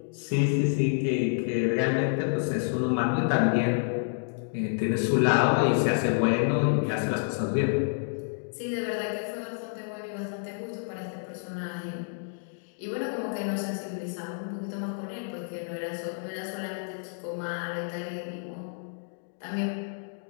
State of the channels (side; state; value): right; silent; digital silence